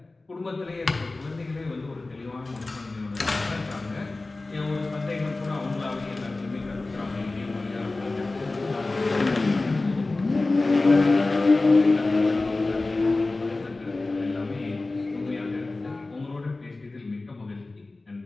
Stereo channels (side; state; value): right; quieter; 3.2 dB